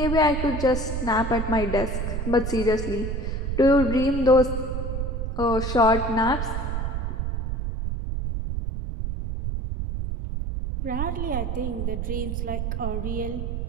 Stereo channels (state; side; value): noise; right; rumble, 2 dB below the sound